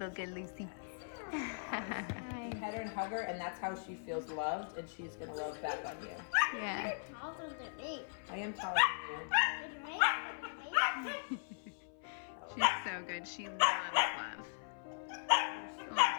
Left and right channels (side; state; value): right; silent; 52 dB below the other